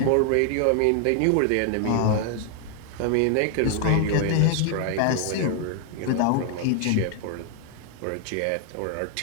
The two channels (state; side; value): different; both; correlation 0.00